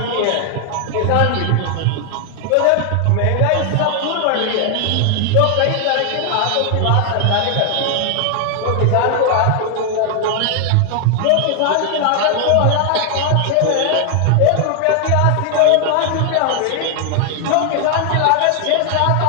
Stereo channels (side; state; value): both; different; correlation 0.00